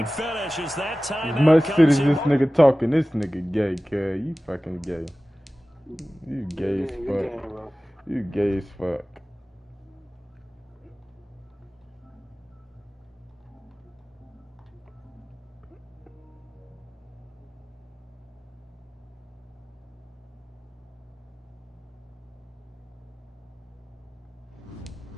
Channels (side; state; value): both; normal; correlation 0.97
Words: finish as that timeout Much shit comes as in. this nigga talking. This nigga gay, cuz. You fucking gay. You gay as fuck. You gay as fuck.